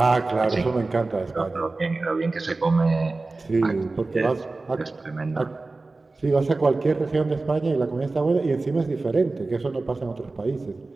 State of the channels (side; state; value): left; quieter; 3.4 dB